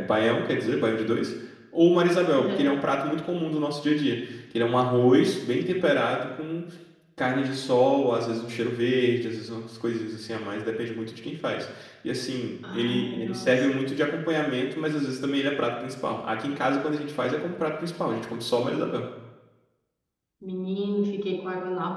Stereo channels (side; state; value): both; identical; correlation 1.00